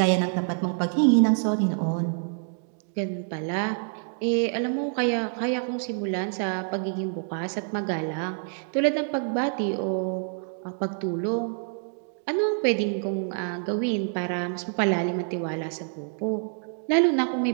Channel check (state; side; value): silent; left; 60 dB below the other